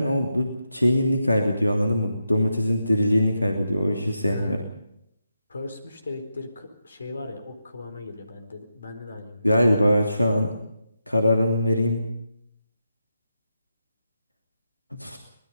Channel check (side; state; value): both; inverted; correlation -0.86